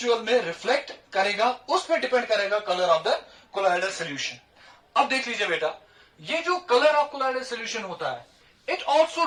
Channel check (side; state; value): both; identical; correlation 1.00